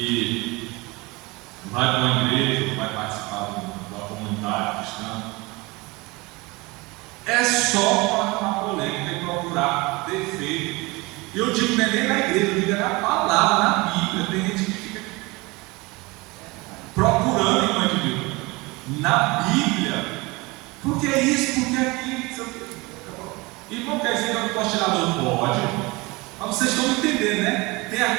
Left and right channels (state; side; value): quieter; left; 24.2 dB